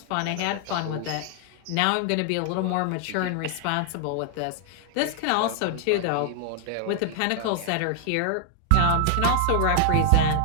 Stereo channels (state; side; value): different; both; correlation 0.00